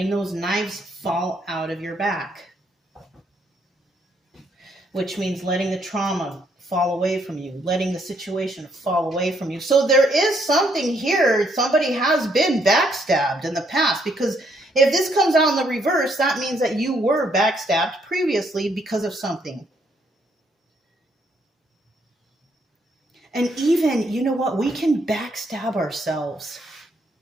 those knives fall out of your back. Which means letting the trauma fall away from you, letting the situation fall away from you. So there is something here. Somebody has been backstabbed in the past, because if this comes out in the reverse, that means that you were backstabbed previously because of something. And even, you know what? We can backstab ourselves.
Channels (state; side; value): normal; both; correlation 0.71